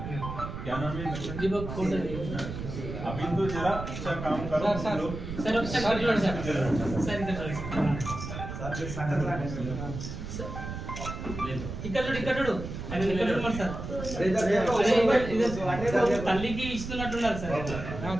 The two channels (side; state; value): right; noise; rumble, 7 dB below the sound